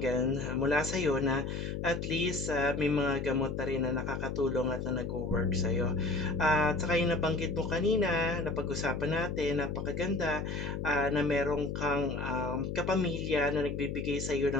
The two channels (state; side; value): noise; left; hum, 4 dB below the sound